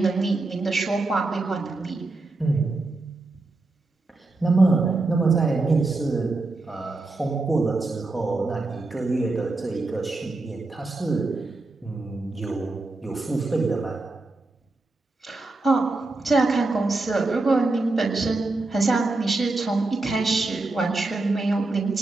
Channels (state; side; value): quieter; left; 3.2 dB